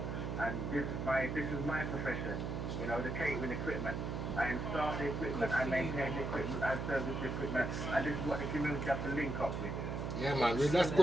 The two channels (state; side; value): noise; right; hum, 3 dB below the sound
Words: and this is my profession. You know, the catering equipment. I install the equipment, I maintain the equipment, I service the equipment, and this is what the community has to link up with. Yeah, man, well, that's